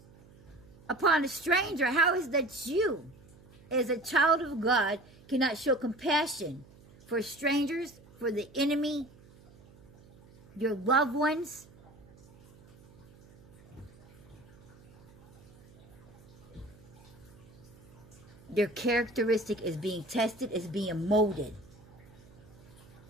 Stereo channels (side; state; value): right; noise; hum, 23 dB below the sound